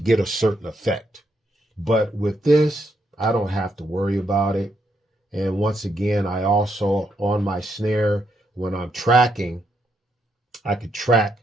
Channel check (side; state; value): both; normal; correlation 0.78